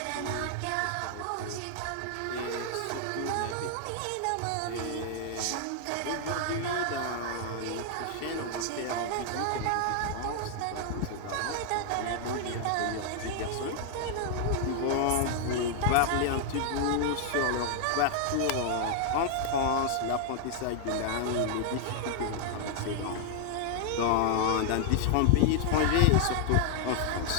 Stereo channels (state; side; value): different; both; correlation 0.00